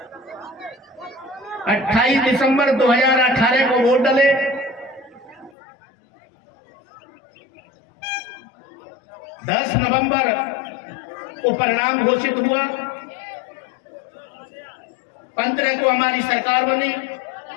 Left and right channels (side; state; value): right; drops out; at 5.5 s